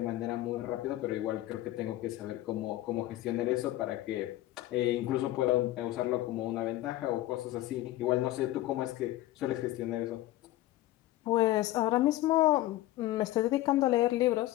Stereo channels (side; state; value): right; quieter; 15.9 dB